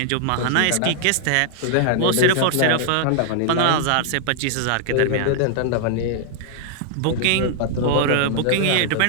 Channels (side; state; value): both; different; correlation -0.01